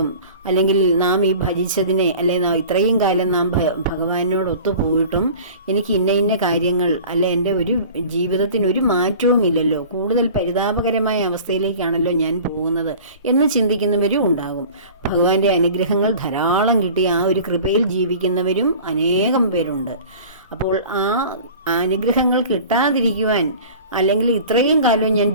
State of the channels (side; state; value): both; inverted; correlation -0.42